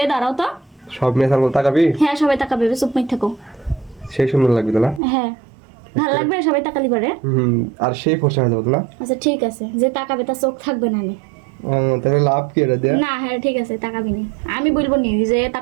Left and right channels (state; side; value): drops out; left; at 5.0 s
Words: দাঁড়াও তো। সব মেয়ে সামনে তাকাবি? হ্যাঁ, সবাই তাকাবে, চুপ মেয়ে থাকো। সেই সুন্দর লাগবে তাহলে। হ্যাঁ, ভালো লাগবে, সবাই তাকালি পারে। আর সেই ফসা হয়ে যাবে তাহলে। আচ্ছা ঠিক আছে, যে তাকাবে তার চোখ থাকবে না। তাহলে লাভ কি এটা দিয়ে? না, হ্যাঁ ঠিক আছে, তাকাবি নি, আমি বলবো নি যে